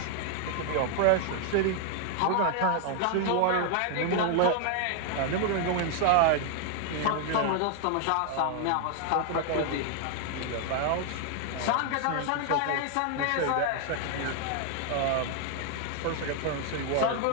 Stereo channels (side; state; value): both; different; correlation 0.00